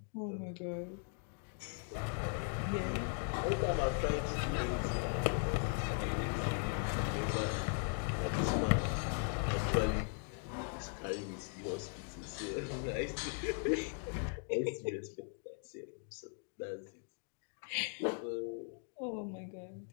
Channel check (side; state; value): right; silent; 52 dB below the other